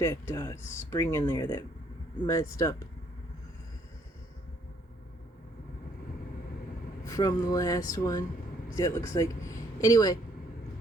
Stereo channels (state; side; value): normal; both; correlation 0.67